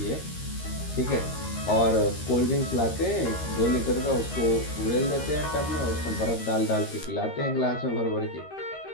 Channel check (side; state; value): right; late; 13 ms